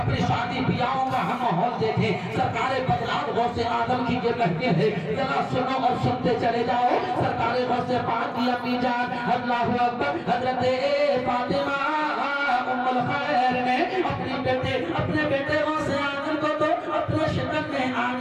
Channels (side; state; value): both; identical; correlation 1.00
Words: شادی بیاہوں کا ہم ماحول دیکھیں۔ سرکار بدلات غوث آدم کی یہ کہتے ہیں، ذرا سنو اور سنتے چلے جاؤ۔ سرکار غوث پاک کی امی جان اللہ اکبر حضرت فاطمہ ام الخیر نے اپنے بیٹے غوث آدم کو تو اپنے شکم میں